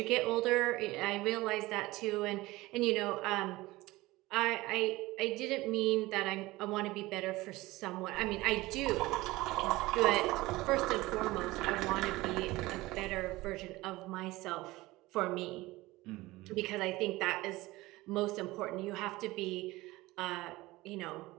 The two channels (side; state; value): left; quieter; 19.5 dB